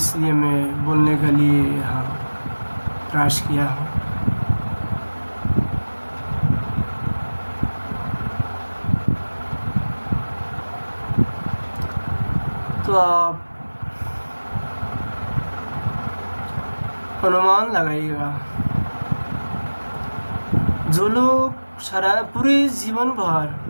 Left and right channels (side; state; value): both; inverted; correlation -1.00